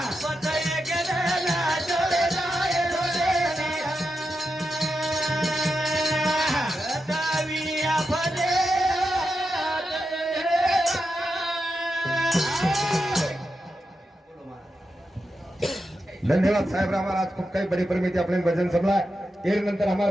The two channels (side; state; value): both; normal; correlation 0.88